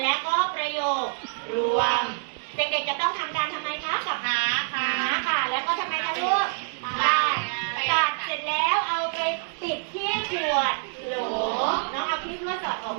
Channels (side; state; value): left; silent; digital silence